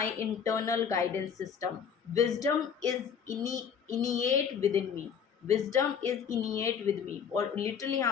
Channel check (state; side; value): quieter; right; 7.2 dB